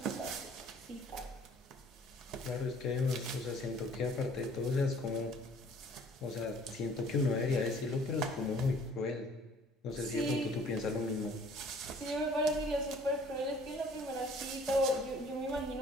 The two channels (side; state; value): both; normal; correlation 0.55